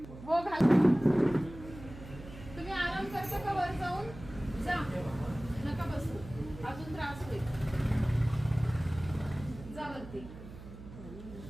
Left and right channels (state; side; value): noise; right; hum, 15 dB below the sound